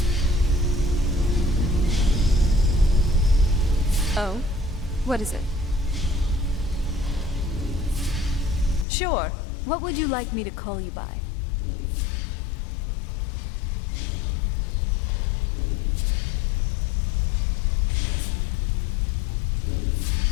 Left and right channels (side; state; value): right; drops out; at 8.8 s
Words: Oh? What is it? Sure. What would you like me to call you by?